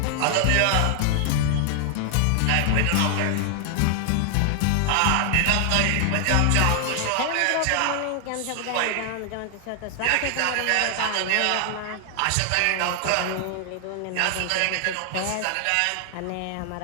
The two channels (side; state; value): both; different; correlation 0.00